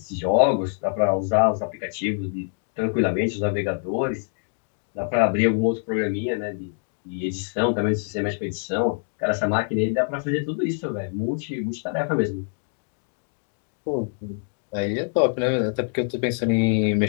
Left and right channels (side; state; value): right; silent; digital silence